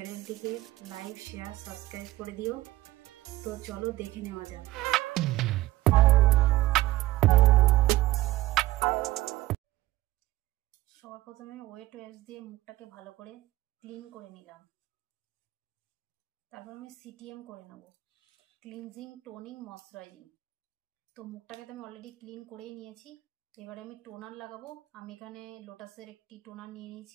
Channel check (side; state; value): left; quieter; 16.4 dB